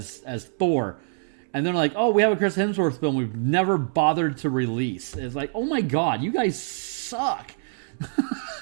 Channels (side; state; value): left; silent; 62 dB below the other